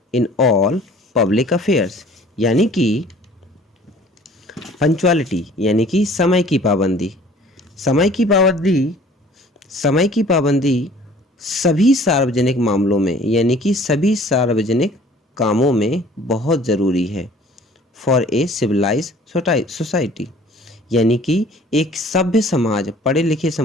in all public affairs. यानी कि पंचुअलिटी यानी कि समय की पाबंदी, समय की पाबंदी सभी सार्वजनिक मामलों में, यानी कि सभी सार्वजनिक कामों में बहुत ज़रूरी है फॉर ए सिविलाइज सोसाइटी। यानी कि एक सभ्य समाज, पढ़े लिखे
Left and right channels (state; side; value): normal; both; correlation 0.51